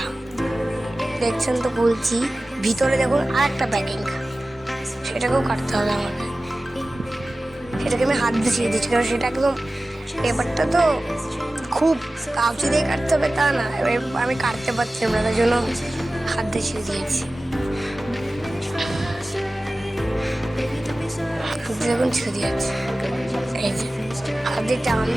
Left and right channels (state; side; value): normal; both; correlation 0.96